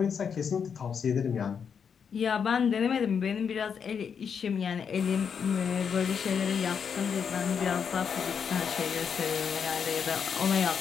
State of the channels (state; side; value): quieter; right; 6.8 dB